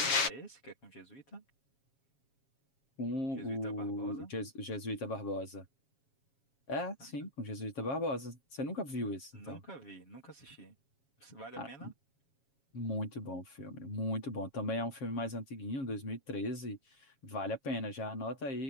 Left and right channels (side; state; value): right; late; 7.3 ms